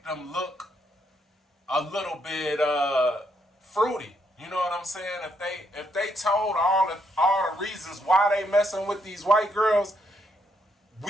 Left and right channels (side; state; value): both; normal; correlation 0.76